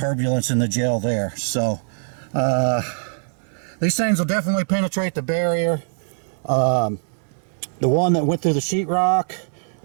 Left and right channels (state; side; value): silent; left; digital silence